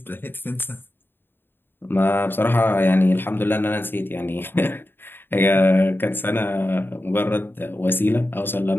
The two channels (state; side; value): late; right; 0.10 ms